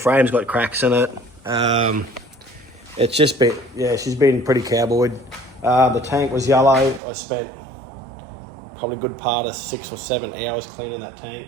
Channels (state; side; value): drops out; left; at 7.0 s